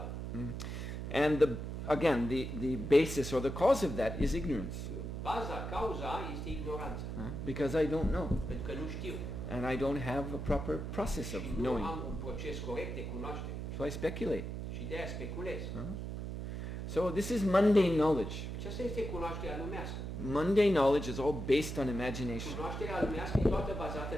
And the basis or the cause of that is ignorance. Baza, cauza este ignoranța, Because I don't know. pentru că nu știu And I don't have a proper process of și nu knowing. am un proces corect de cunoaștere So I speculate. și de aia speculez. So this is mundane knowledge. Aceasta este cunoașterea lumească. Mundane knowledge is all based on imagination. Cunoașterea lumească e toată bazată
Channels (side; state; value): right; noise; hum, 5 dB below the sound